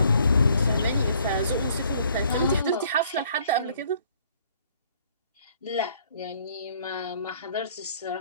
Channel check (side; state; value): both; inverted; correlation -0.62